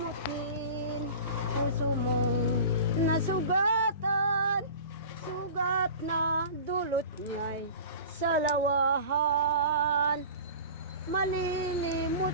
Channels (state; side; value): inverted; both; correlation -0.37